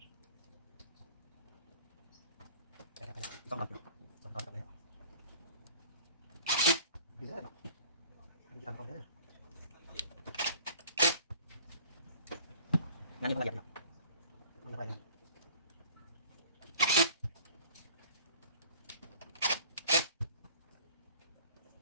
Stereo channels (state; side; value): inverted; both; correlation -0.48